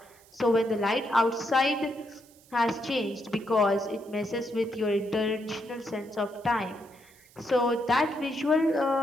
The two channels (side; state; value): right; noise; hiss, 27 dB below the sound